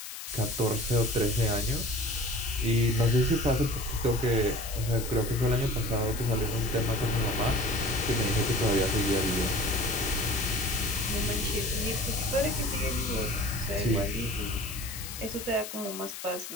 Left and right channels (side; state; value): left; noise; hiss, 10 dB below the sound